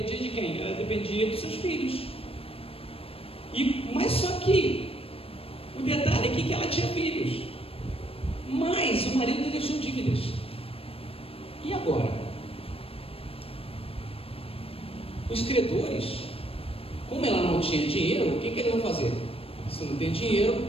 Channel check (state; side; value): late; right; 0.28 ms